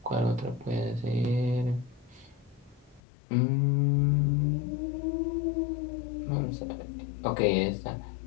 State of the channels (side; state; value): right; drops out; at 3.0 s